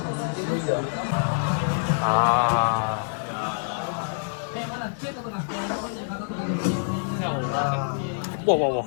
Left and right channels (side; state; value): right; silent; digital silence